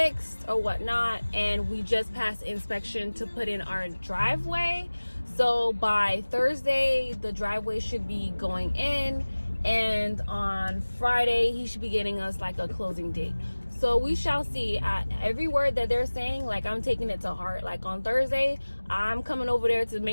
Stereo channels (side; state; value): both; inverted; correlation -1.00